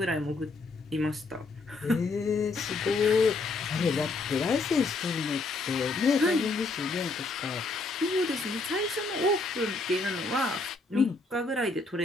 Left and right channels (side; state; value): right; quieter; 3.6 dB